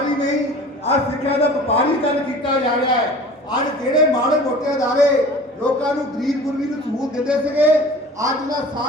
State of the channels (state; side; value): normal; both; correlation 0.42